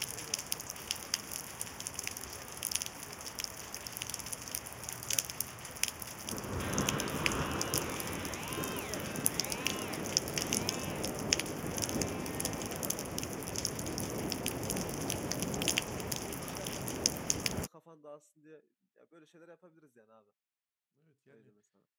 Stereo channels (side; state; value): both; identical; correlation 1.00